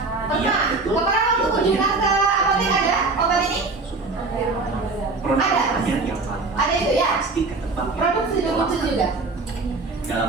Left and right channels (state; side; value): quieter; left; 3.7 dB